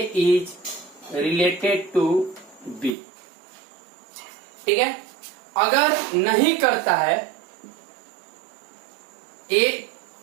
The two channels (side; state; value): left; drops out; at 3.0 s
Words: is related to B, ठीक है। अगर नहीं करता है ए,